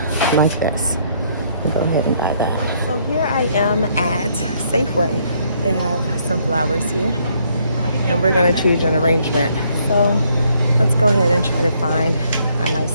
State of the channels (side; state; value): both; inverted; correlation -0.69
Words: like this. I'll go ahead and buy that. So here I am at Safeway. They have some flowers here, and we're gonna choose an arrangement. So let's go ahead and try to find a nice